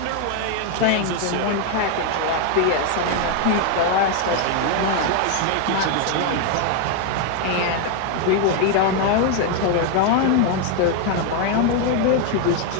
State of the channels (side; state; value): both; different; correlation 0.01